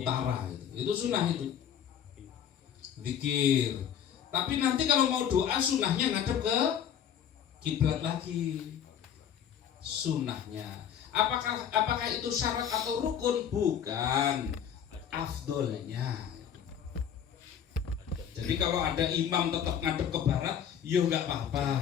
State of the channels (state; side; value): quieter; right; 9.0 dB